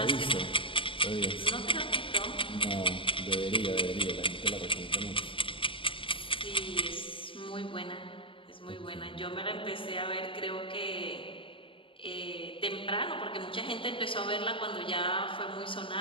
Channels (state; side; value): late; right; 0.25 ms